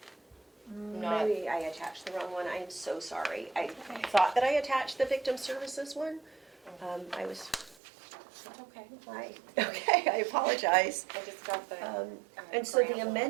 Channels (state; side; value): drops out; left; at 7.8 s